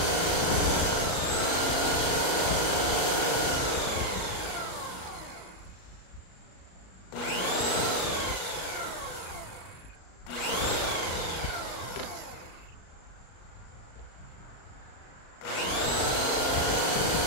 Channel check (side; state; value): right; late; 38 ms